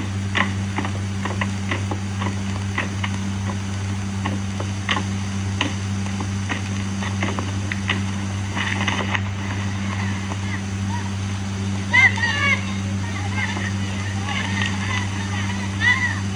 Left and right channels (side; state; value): both; identical; correlation 1.00